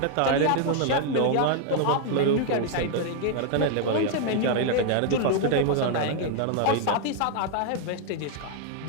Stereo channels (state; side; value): different; both; correlation 0.00